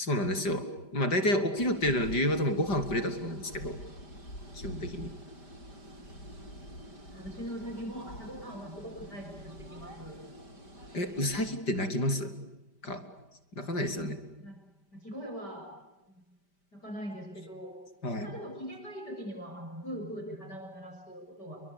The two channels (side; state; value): right; late; 5.1 ms